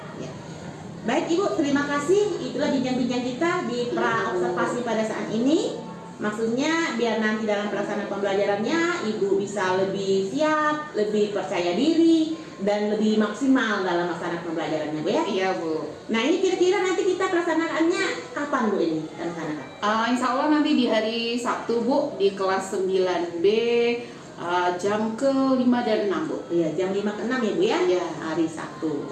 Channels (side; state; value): both; identical; correlation 1.00